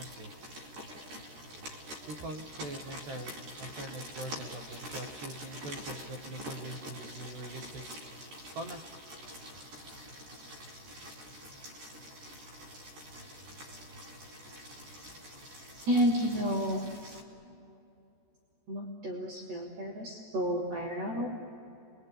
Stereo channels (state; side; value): late; left; 14 ms